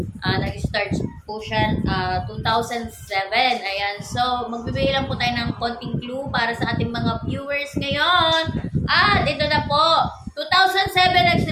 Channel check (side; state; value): both; identical; correlation 1.00